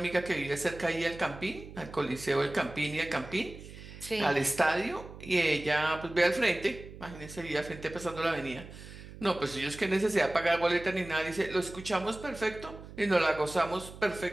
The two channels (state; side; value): noise; right; hum, 15 dB below the sound